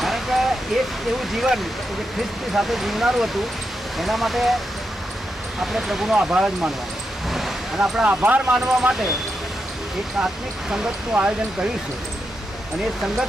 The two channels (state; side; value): normal; both; correlation 0.85